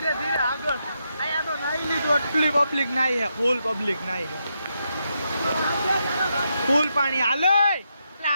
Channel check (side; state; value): both; inverted; correlation -0.82